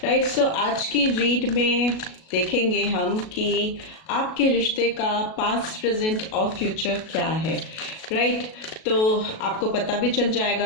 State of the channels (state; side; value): late; right; 37 ms